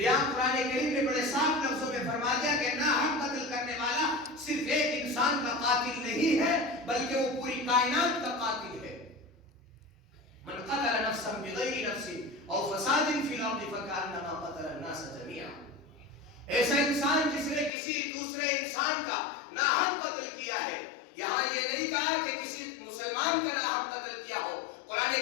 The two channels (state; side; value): drops out; right; at 17.7 s